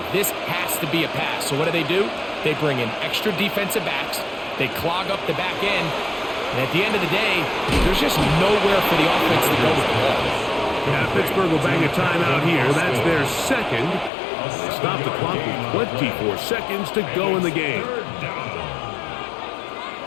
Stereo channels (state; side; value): drops out; right; at 14.1 s